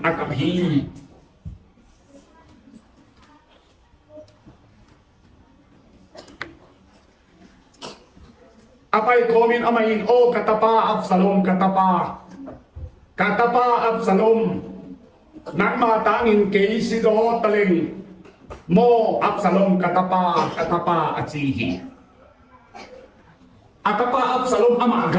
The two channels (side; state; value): both; identical; correlation 1.00